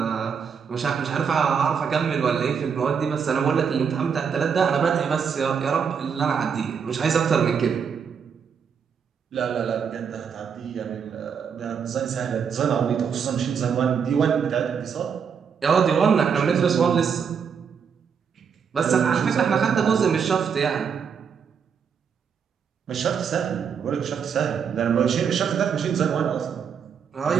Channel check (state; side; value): quieter; left; 6.8 dB